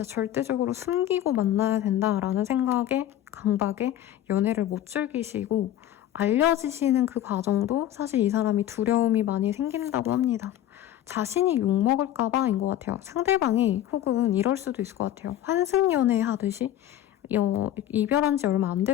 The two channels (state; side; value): quieter; right; 12.1 dB